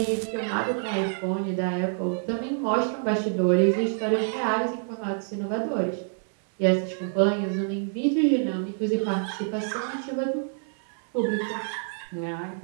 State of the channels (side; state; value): left; silent; 60 dB below the other